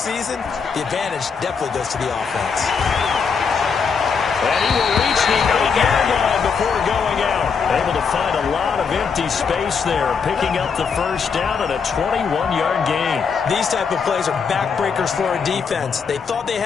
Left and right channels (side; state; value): right; quieter; 5.9 dB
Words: the advantage definitely goes to the offense. And he will reach the 8-yard line before going out. Able to find a lot of empty space there, picking up the 1st down and a 21-yard gain. These type of plays are backbreakers for a defense. They thought they